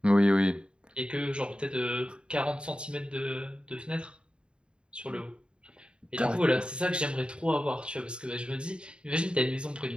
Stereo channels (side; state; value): left; late; 0.053 ms